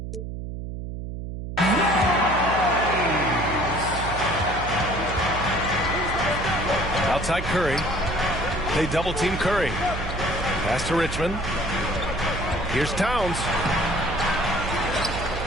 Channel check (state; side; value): noise; right; hum, 7 dB below the sound